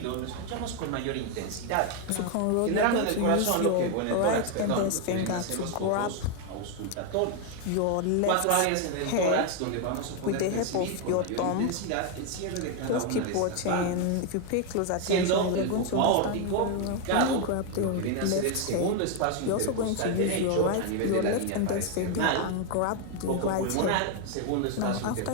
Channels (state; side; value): different; both; correlation 0.01